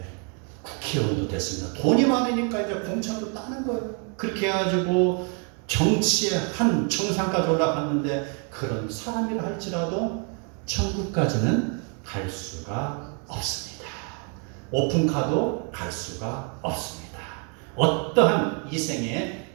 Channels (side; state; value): left; quieter; 38.6 dB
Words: 국회의원도 됐습니다. 돈이 많으니까 이제 공천도 따는 거예요. 그렇게 해가지고 정치의 한 정상까지 올라갔는데 그런 사람이라 할지라도 천국까지는 갈 수가 없습니다. 오픈카도 갈 수가 없습니다. 어떠한 이생의